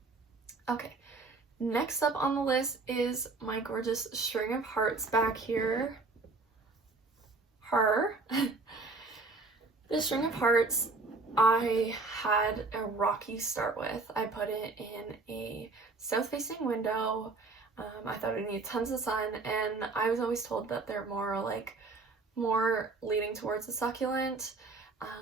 Okay, next up on the list is my gorgeous string of hearts back here. This string of hearts, I had a rocky start with. I put it in a south-facing window. I thought it needed tons of sun, and I was always told that they're more leaning towards the succulent.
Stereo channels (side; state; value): left; quieter; 3.7 dB